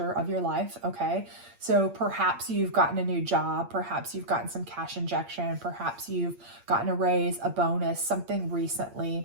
of your life. Okay, so perhaps you've gotten a new job, perhaps you've gotten some cash injection, perhaps you've gotten a raise, a bonus, something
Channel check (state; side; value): late; left; 8.6 ms